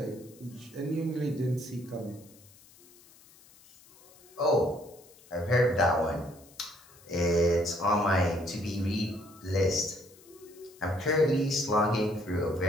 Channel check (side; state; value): left; noise; hiss, 25 dB below the sound